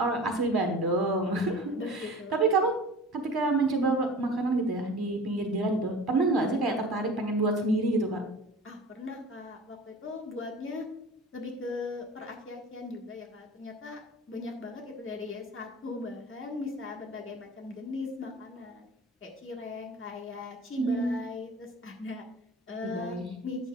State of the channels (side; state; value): both; normal; correlation 0.39